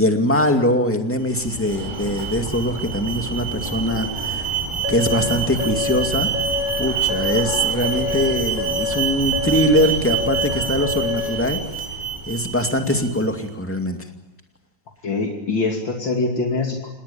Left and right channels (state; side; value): normal; both; correlation 0.13